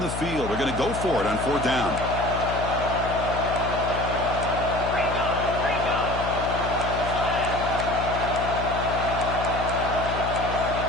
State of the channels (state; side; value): noise; left; hum, 6 dB below the sound